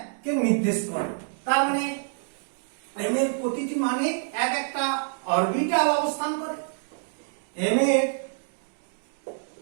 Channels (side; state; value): left; silent; 60 dB below the other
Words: কে নির্দেশ করে তার মানে m এর প্রতিটি মানে একটা অরবিটাল অবস্থান করে m এর